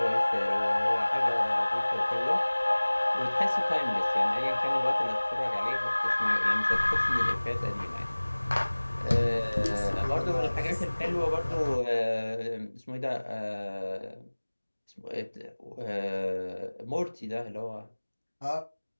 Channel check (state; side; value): inverted; both; correlation -1.00